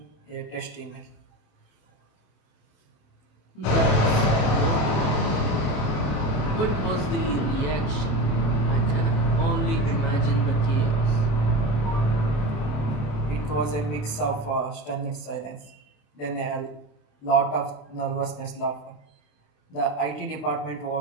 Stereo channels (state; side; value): late; right; 27 ms